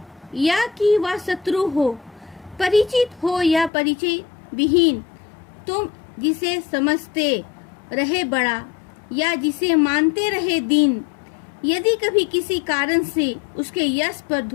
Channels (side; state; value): right; drops out; at 3.7 s